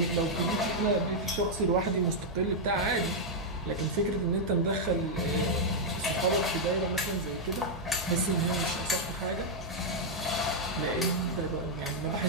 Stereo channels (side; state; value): both; normal; correlation -0.03